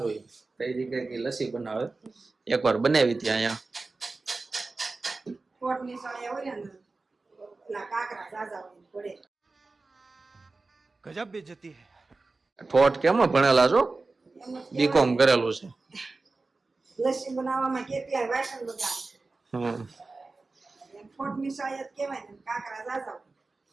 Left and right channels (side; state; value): left; quieter; 3.6 dB